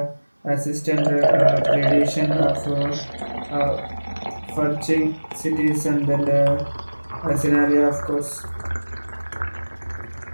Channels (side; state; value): both; inverted; correlation -1.00